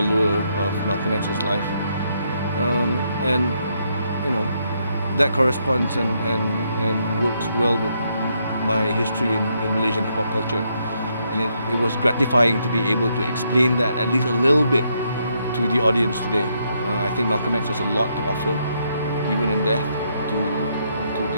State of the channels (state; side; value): inverted; both; correlation -0.76